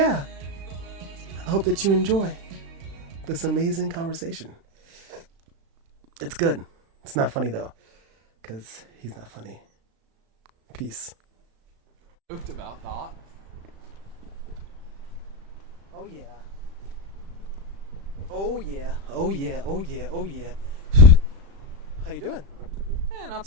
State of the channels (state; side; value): late; left; 36 ms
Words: I hope that you enjoy this amazing conversation. It's good. It's not funny though, because he's not funny. Peace. About that. Oh yeah. Oh yeah. Oh yeah. Oh yeah. Oh yeah. How you doing? Not